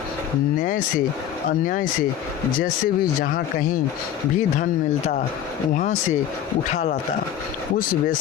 न्याय से अन्याय से जैसे भी जहाँ कहीं भी धन मिलता वहाँ से उठा लाता। उस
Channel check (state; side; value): quieter; right; 10.2 dB